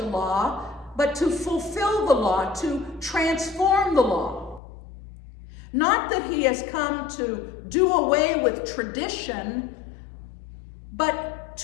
law, but to fulfill the law, to transform the law. Not that he has come to do away with tradition, but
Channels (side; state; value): right; drops out; at 4.6 s